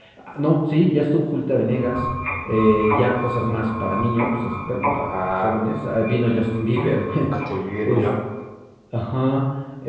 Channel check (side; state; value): both; identical; correlation 1.00